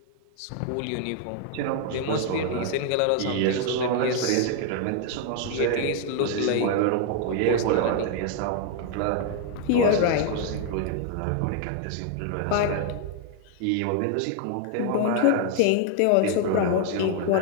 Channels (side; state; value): both; different; correlation 0.00